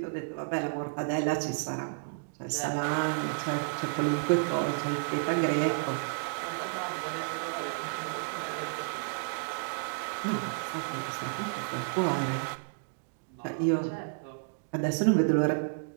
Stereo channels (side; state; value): left; silent; digital silence